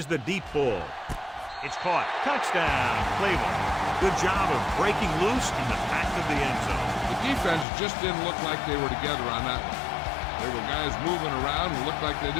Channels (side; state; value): right; drops out; at 7.7 s